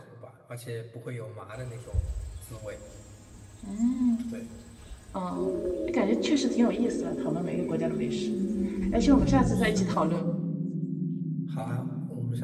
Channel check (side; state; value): both; identical; correlation 1.00